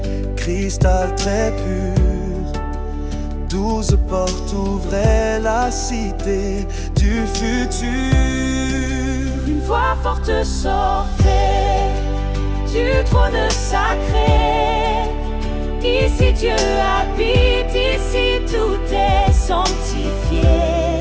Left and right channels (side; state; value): both; identical; correlation 1.00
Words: cristal très pur. 12 portes ouvraient la cité du futur. Une voix forte sortait du trône sacré. Ici Dieu habite, ici tout est sanctifié.